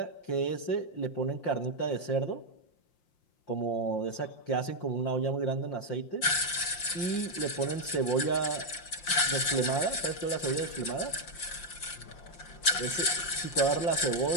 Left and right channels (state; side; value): late; right; 5.7 ms